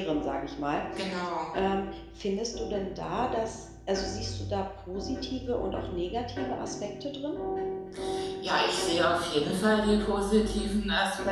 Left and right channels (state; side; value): identical; both; correlation 1.00